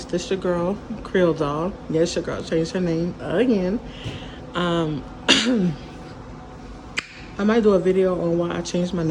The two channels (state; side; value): identical; both; correlation 1.00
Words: This your girl, Creole Doll. Yes, your girl changed her name again. I might do a video on why I changed my